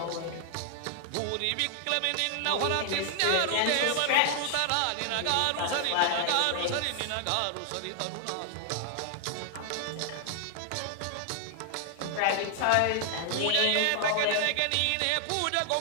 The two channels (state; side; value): different; both; correlation 0.00